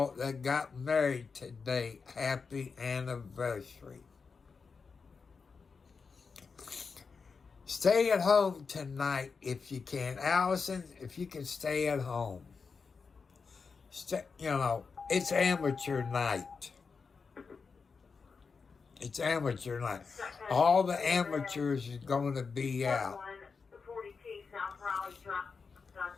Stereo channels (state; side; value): quieter; right; 5.1 dB